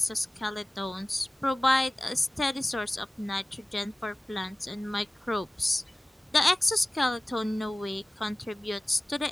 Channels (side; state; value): both; normal; correlation 0.97